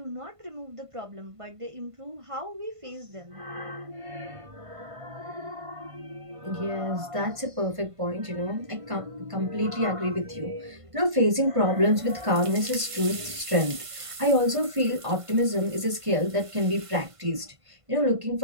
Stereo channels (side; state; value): left; late; 1.5 ms